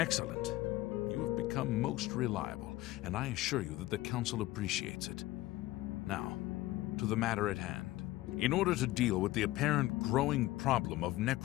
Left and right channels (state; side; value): quieter; right; 17.3 dB